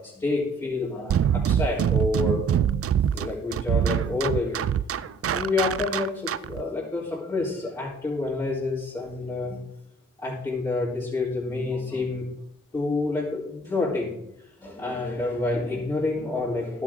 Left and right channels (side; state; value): both; normal; correlation 0.58